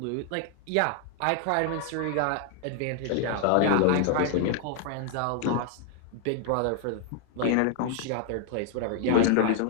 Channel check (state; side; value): different; both; correlation 0.00